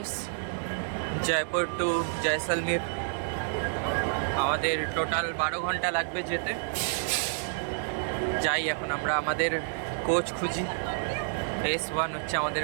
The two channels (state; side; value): silent; left; digital silence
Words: জয়পুর টু জয়সলমীর। আমাদের টোটাল 12 ঘন্টা লাগবে যেতে। যাই এখন আমরা আমাদের কোচ খুঁজি। S1 হচ্ছে আমাদের